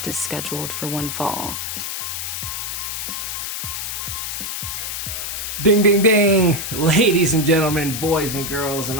is scheduled for one fall. Ding, ding, ding! Ladies and gentlemen, boys and girls, and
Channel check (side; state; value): left; noise; hiss, 4 dB below the sound